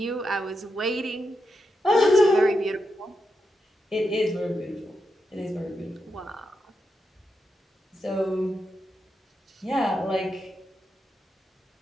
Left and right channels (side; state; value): both; normal; correlation 0.86